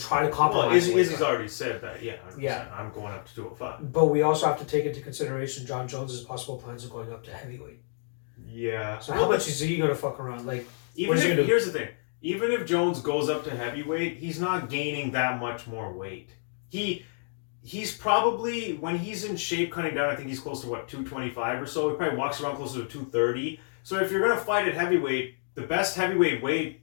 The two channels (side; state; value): right; silent; digital silence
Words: try to compromise. Well, Izzy's already said that, I'm going up to 205. But we also have to take into consideration John Jones' possible plans of going up to heavyweight. Yeah. So how much is he gonna fuck around? Like, here's the thing. Even if Jones goes up to heavyweight, he's not gaining that much more weight. he's probably, when he's in shape cutting down, I think he's close to 225 or so. He probably walks around closer to 230. So if you're going to fight at heavyweight, the best heavyweight weight,